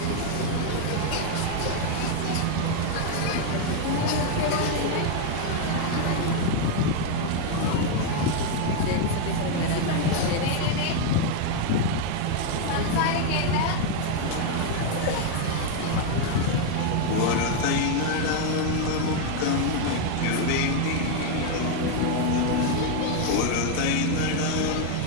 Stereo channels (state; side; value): different; both; correlation 0.01